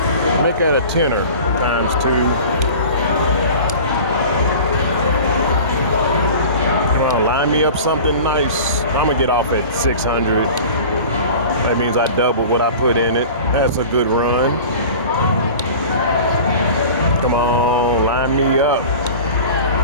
Make that a tenner times two. Line me up something nice. I'm gonna get off at 600. That means I double what I put in it. That's a good run. Come on, line me up.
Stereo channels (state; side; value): inverted; both; correlation -0.39